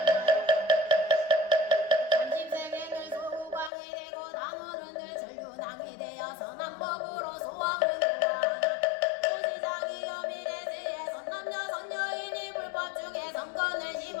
30세계는 소광이 되고 단오른 늘 전륜왕이 되어 선한 법으로 소왕을 교화하나 고시장이여 미래세에 선남녀 선여인이 불법 중에 선건을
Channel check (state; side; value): drops out; right; at 3.7 s